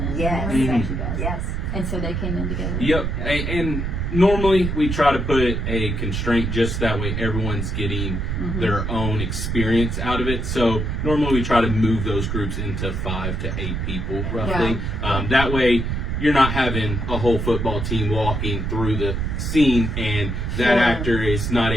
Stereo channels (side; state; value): right; noise; rumble, 2 dB below the sound